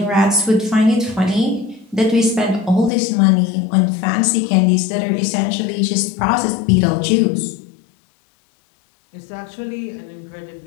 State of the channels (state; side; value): drops out; right; at 2.9 s